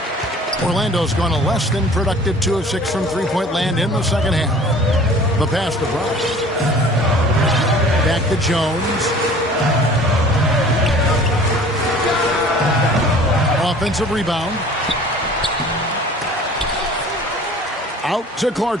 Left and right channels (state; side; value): normal; both; correlation 0.48